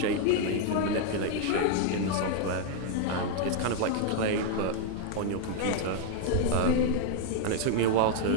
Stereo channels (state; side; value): different; both; correlation 0.00